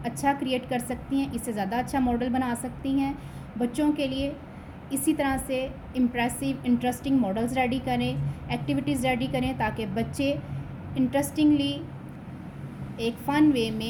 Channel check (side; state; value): both; identical; correlation 1.00